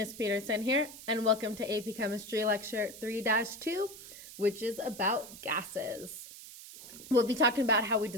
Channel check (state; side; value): noise; right; hiss, 15 dB below the sound